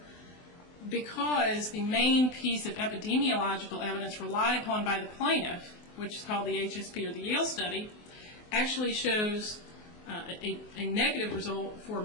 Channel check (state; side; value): late; right; 24 ms